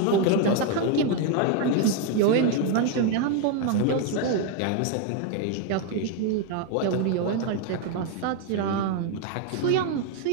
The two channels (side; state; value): both; different; correlation 0.01